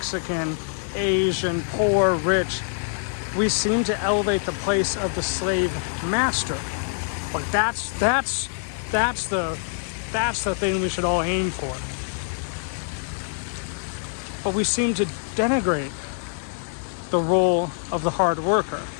Asian, poor, rich, we seem to elevate the place of the slave master. Like that's the thing we should all aim for. But we seem to denigrate the role of the hard worker,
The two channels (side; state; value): right; silent; 62 dB below the other